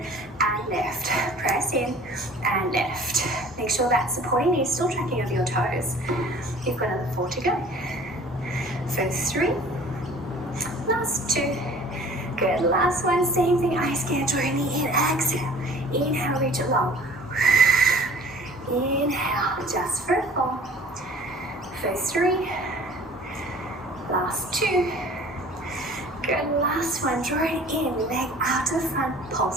and lift, press in and lift. Make sure that supporting knee is still tracking over your toes. You've got another 4 to go. For 3, last 2, good. Last 1, same thing, ice skate, draw your knee in, exhale, inhale, reach it long. Inhale, just for 4. For 3, last 2, good. Last 1, draw it in, leg out to the front,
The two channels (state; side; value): normal; both; correlation 0.48